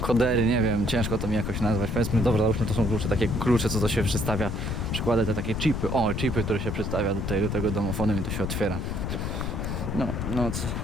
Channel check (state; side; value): noise; left; rumble, 2 dB below the sound